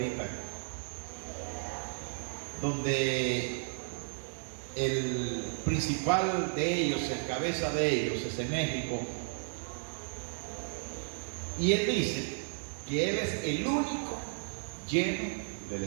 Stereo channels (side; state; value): left; silent; digital silence